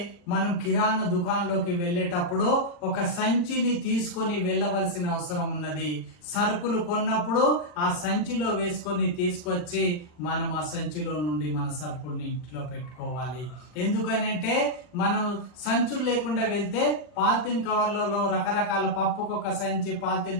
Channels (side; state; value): right; late; 40 ms